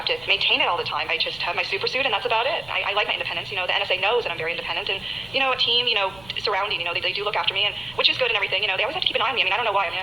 to maintain it all the time. I just have my super suit, and that's about it. I like my independence. You know, the NSA knows that I'm very independent, and, you know, a team, you know, surrounding, you know, they do look after me, and which is good and everything. You know, they always have to keep an eye on me. I mean, I don't know why. I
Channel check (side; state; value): right; noise; rumble, 23 dB below the sound